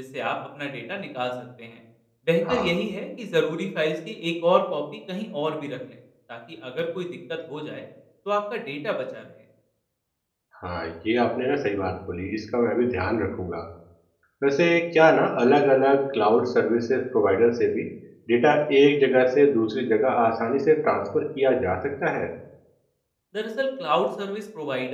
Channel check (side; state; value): both; identical; correlation 1.00